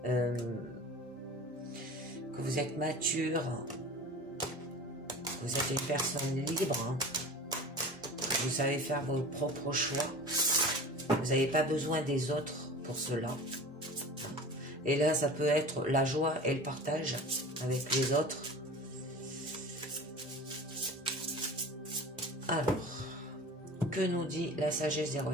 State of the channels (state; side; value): normal; both; correlation 0.37